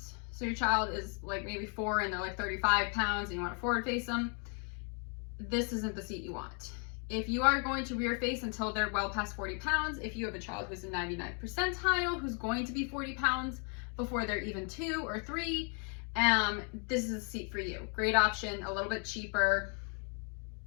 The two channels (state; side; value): quieter; right; 39.3 dB